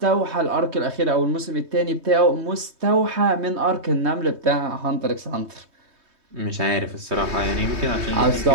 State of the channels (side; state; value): left; late; 3.2 ms